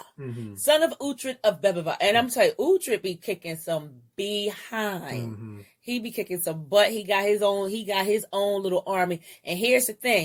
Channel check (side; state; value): both; identical; correlation 1.00